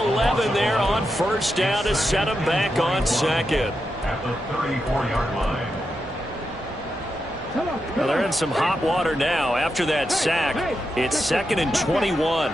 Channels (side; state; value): both; normal; correlation 0.87